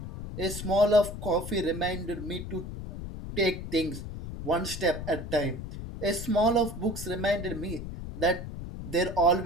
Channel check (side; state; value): left; noise; rumble, 8 dB below the sound